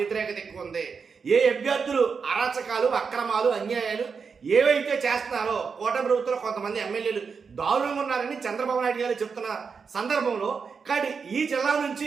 వ్యతిరేకత ఎక్కువ ఉంది, ఏ అభ్యర్థులు అరాచకాలు అక్రమాలు అన్యాయాలు ఏవైతే చేస్తున్నారో కూటమి ప్రభుత్వంలో కొంతమంది ఎమ్మెల్యేలు దారుణంగా ఉన్నారని చంద్రబాబు నాయుడు గారు చెప్తున్న సందర్భంలో, కానీ ఈ జిల్లా నుంచి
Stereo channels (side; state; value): left; quieter; 5.6 dB